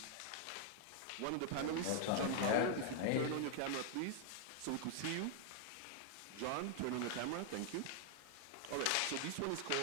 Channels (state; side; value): different; both; correlation 0.00